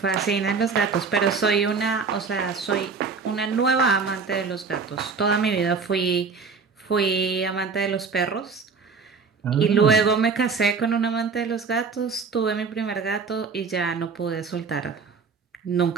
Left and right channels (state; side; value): quieter; left; 5.1 dB